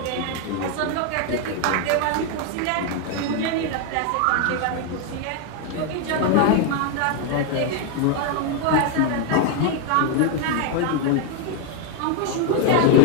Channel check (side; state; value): both; different; correlation 0.01